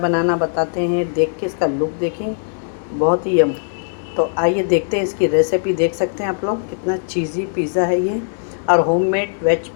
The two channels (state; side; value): silent; right; 66 dB below the other